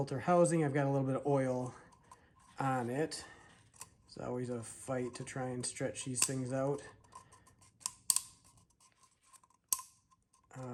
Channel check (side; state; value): both; identical; correlation 1.00